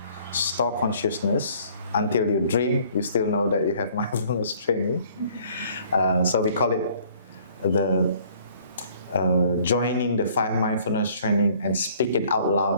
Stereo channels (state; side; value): inverted; both; correlation -0.58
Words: store consciousness. Until you dream, you still know that you have mindfulness training. So we call it the joining the 5 mindfulness training and speak it out